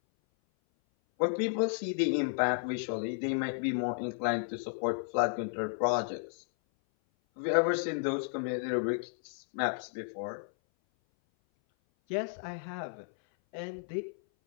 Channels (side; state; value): right; silent; 56 dB below the other